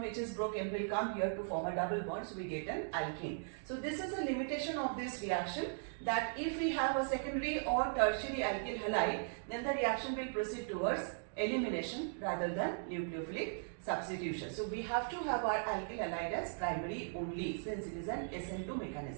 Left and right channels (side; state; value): left; silent; digital silence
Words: which is broken will come here to form a double bond, so we get an alkene. So this is a limitation of this reaction, that if we have a secondary or tertiary alkyl halide, then the reaction will proceed towards elimination rather than nucleophilic substitution. So we have to have our alkyl halide as primary only, since it is an SN2